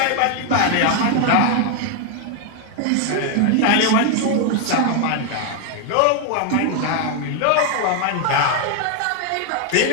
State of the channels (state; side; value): different; both; correlation 0.01